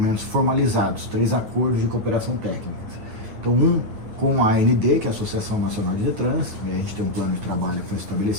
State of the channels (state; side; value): late; left; 9.3 ms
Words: formalizados, 3 acordos de cooperação técnica. Então, um com a AND, que é a Associação Nacional de Detran, e a gente tem um plano de trabalho que foi